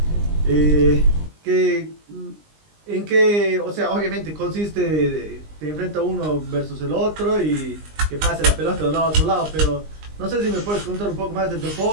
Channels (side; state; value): left; late; 20 ms